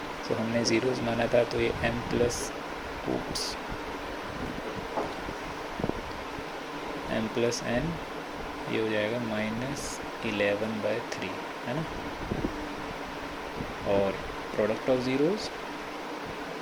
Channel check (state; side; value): identical; both; correlation 1.00